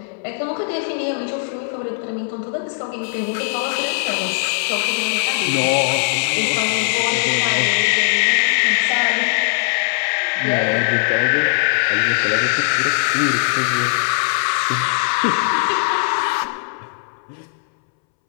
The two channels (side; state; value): right; silent; 66 dB below the other